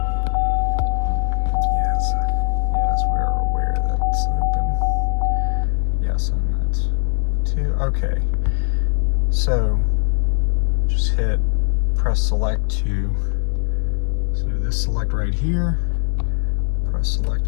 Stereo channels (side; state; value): right; silent; 62 dB below the other